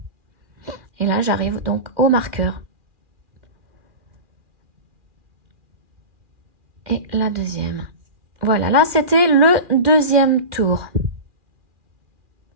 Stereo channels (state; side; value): late; left; 2.4 ms